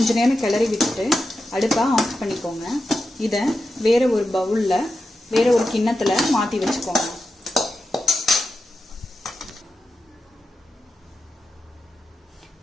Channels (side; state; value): both; normal; correlation 0.90